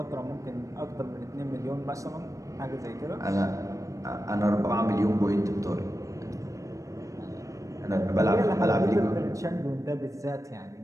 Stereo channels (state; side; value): late; left; 0.16 ms